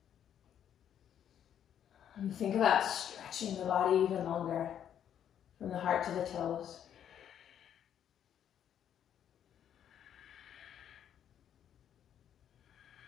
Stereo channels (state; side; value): quieter; right; 9.6 dB